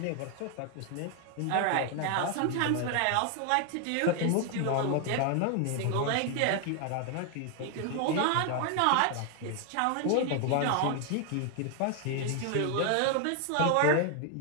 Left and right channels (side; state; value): both; different; correlation 0.00